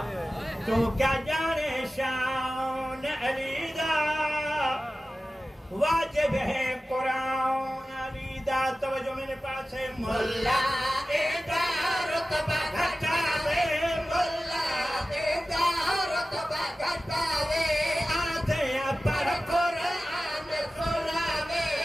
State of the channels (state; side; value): normal; both; correlation 0.95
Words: तो क्या जाने शान अली दा वाजिब है कुरान अली दा तवज्जो मेरे पास है मुल्ला एदा रुतबा घटावे मुल्ला एदा रुतबा घटावे आधे पर कुरान सुनावे